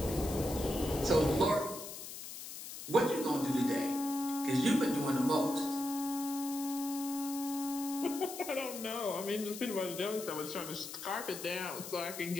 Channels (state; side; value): noise; left; hiss, 10 dB below the sound